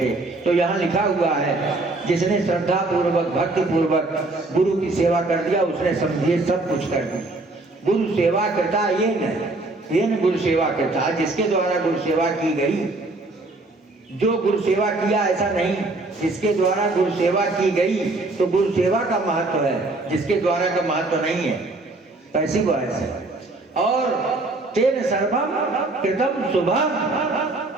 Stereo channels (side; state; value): left; quieter; 3.0 dB